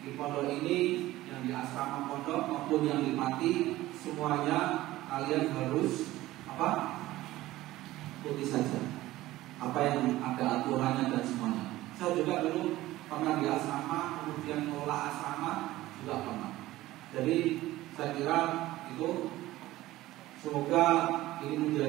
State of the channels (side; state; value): left; quieter; 16.6 dB